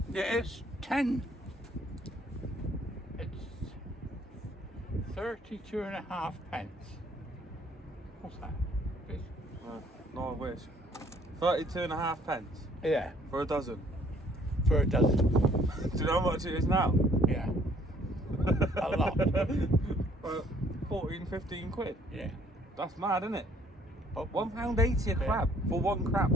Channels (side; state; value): both; normal; correlation 0.62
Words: it's 10. It's 32.5 pence. What's that? No, I wish. 32.5 pence Yeah, for a dozen. for a dozen. Do you know how much it is now? Yeah, a lot. 14, 15 quid. Yeah. That's mad, isn't it? But £1.80 a crab for 1 crab.